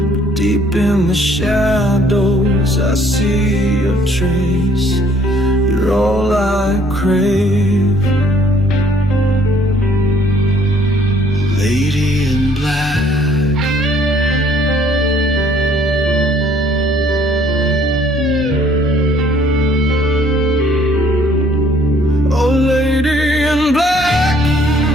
But deep in the shadows I see your trace. You're all I crave. Lady in black, oh lady in black,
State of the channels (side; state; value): both; normal; correlation 0.60